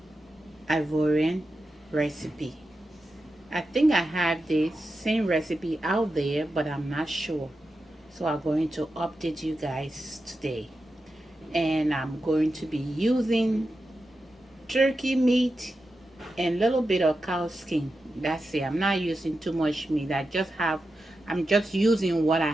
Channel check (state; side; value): normal; both; correlation 0.90